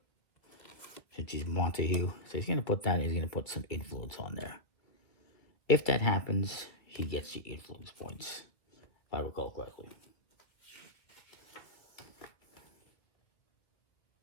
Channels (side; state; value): right; late; 1.7 ms